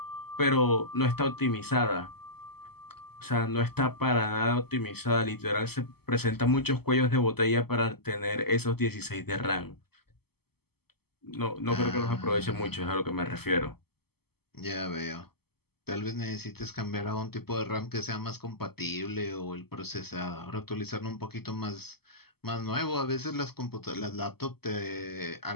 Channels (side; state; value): right; late; 0.96 ms